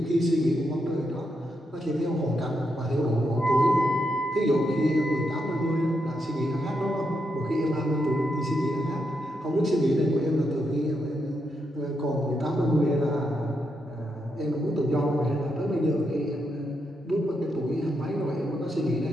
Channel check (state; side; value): normal; both; correlation 0.82